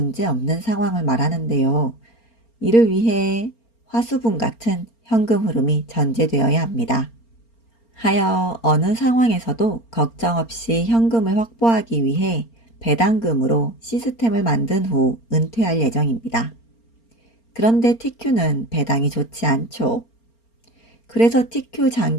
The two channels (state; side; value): late; right; 4.3 ms